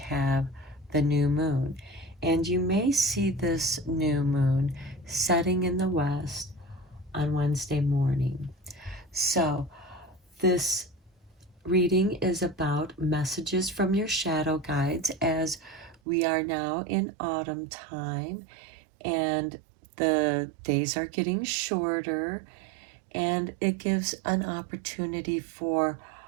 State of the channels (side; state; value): left; drops out; at 16.0 s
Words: have the new moon. And you may see this new moon setting in the west on Wednesday morning. So this reading is about messages from your shadow guides as we are now in autumn time and the days are getting shorter, and it gives an opportunity for